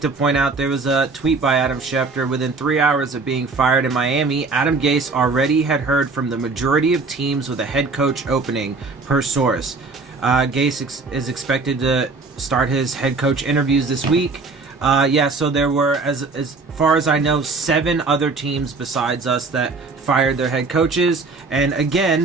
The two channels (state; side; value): quieter; left; 4.0 dB